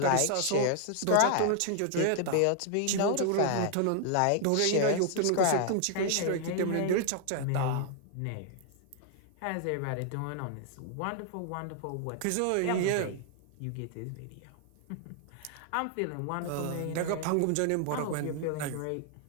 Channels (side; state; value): both; different; correlation 0.00